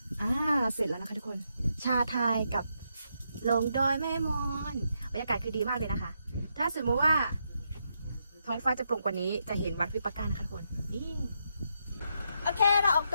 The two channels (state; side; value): inverted; both; correlation -0.80